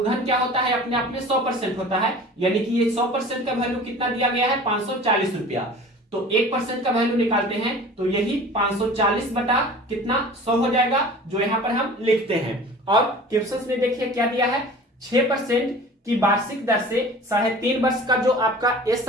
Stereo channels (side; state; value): both; normal; correlation 0.42